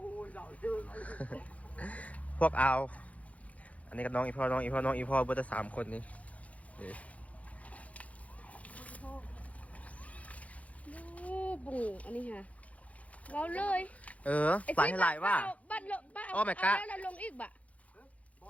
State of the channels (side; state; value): right; late; 0.067 ms